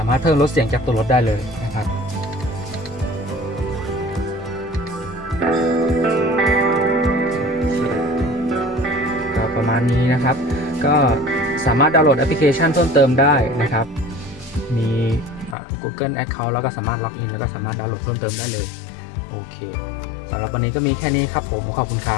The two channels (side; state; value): right; drops out; at 15.6 s